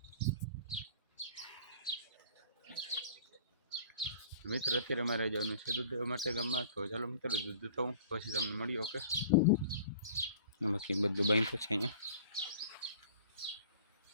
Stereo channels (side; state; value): both; inverted; correlation -0.47